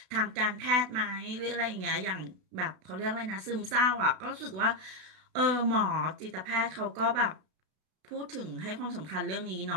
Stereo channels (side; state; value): left; late; 32 ms